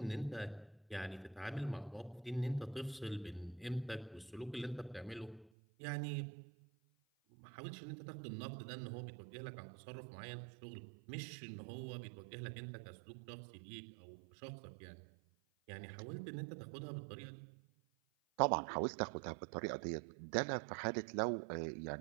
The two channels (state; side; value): drops out; left; at 5.5 s